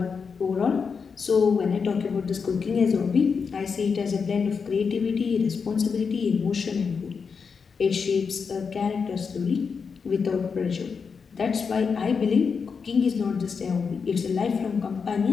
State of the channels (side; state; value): right; quieter; 5.7 dB